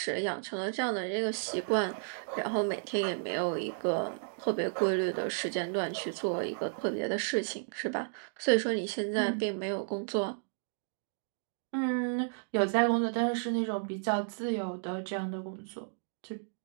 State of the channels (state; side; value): silent; left; digital silence